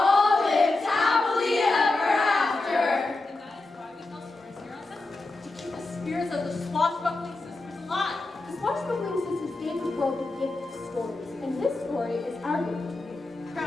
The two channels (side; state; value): right; quieter; 3.1 dB